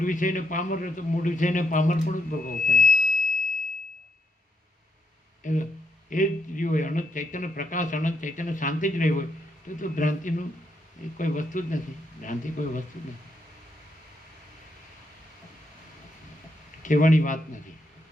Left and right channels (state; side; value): normal; both; correlation 0.78